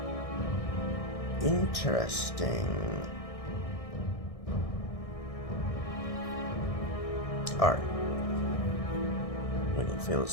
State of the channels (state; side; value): late; right; 1.6 ms